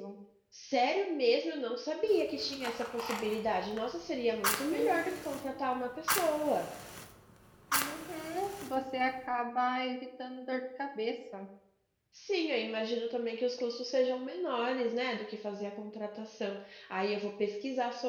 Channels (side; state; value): both; identical; correlation 1.00